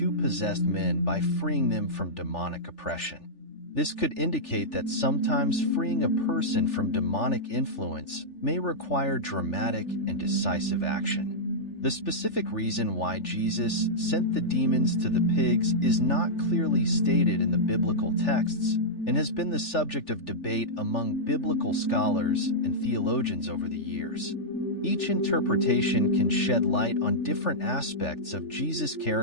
possessed men by freeing them from demonic oppression. This could indicate that sometimes freeing a person from demonic influence may require dramatic and decisive action. The specific reason why Jesus sent the demons to the pigs is not clearly stated in the biblical texts and has been the subject of debate among biblical scholars and theologians over the years. Each interpretation can shed light on different aspects of Jesus'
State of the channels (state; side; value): late; right; 3.4 ms